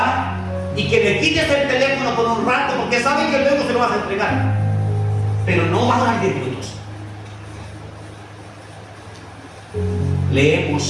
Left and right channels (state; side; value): identical; both; correlation 1.00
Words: y que le quites el teléfono por un rato, porque sabe que luego se lo vas a entregar. Pero no va a orar 10 minutos. Le